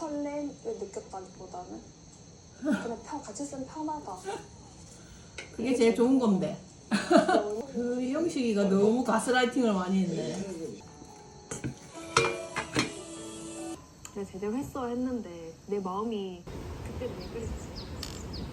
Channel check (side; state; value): both; identical; correlation 1.00